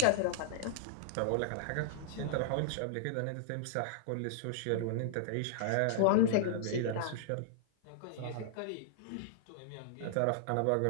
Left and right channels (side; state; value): both; different; correlation -0.01